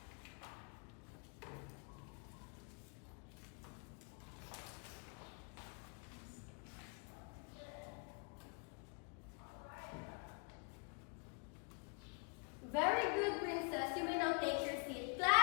Very good, Princess. You may now take your seat.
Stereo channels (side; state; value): right; quieter; 36.9 dB